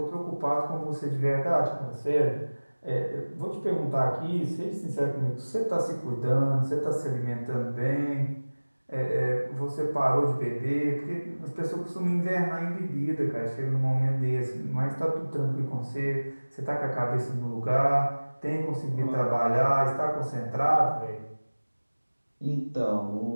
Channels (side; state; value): both; inverted; correlation -1.00